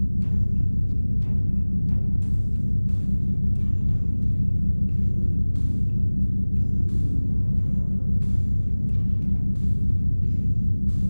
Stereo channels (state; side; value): inverted; both; correlation -1.00